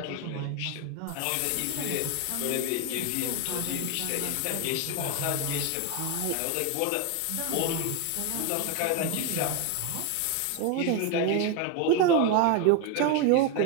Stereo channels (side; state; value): both; different; correlation 0.01